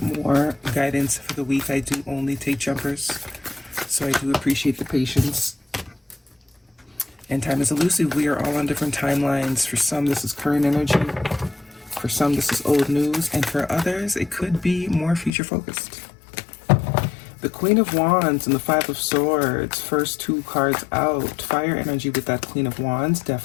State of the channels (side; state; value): right; drops out; at 15.3 s